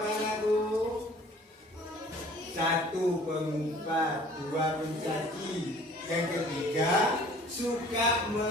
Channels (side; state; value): both; normal; correlation 0.51